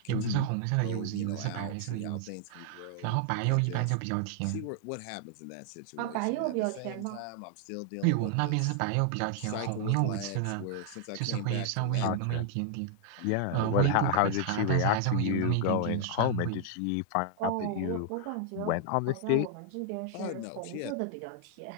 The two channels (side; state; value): both; different; correlation 0.00